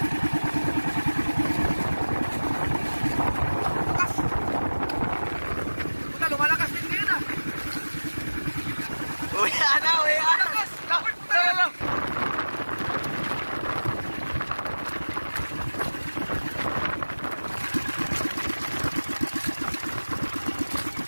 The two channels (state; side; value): inverted; both; correlation -1.00